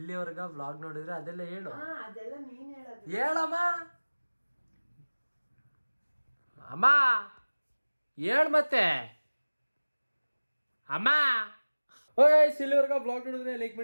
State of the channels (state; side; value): inverted; both; correlation -1.00